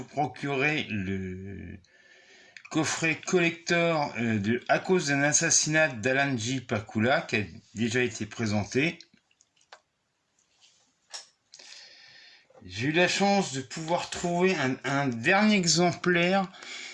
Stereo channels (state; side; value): identical; both; correlation 1.00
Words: procuré le coffret collector de À cause d'un assassinat d'Alan J. Pakula, qui a déjà été présenté. J'ai eu la chance de pouvoir trouver un dernier exemplaire